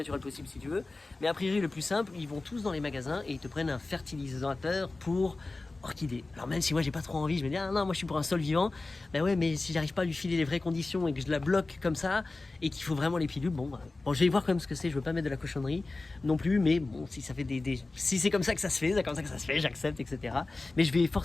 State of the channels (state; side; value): quieter; right; 3.3 dB